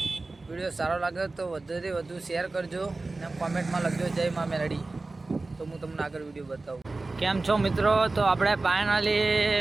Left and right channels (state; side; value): quieter; left; 3.3 dB